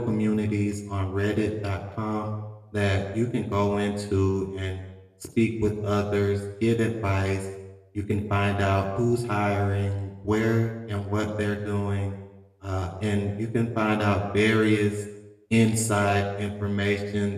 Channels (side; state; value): both; identical; correlation 1.00